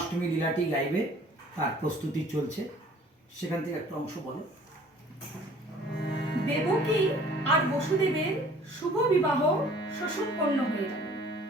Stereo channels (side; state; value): both; normal; correlation 0.52